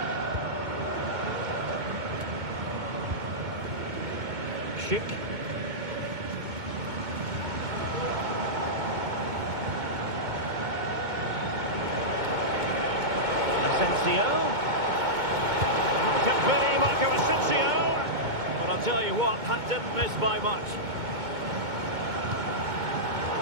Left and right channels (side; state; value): left; late; 2.2 ms